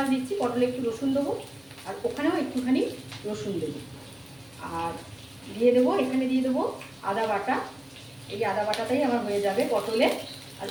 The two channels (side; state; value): left; noise; hum, 30 dB below the sound